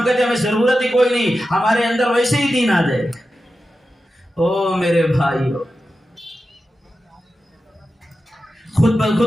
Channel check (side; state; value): both; normal; correlation 0.92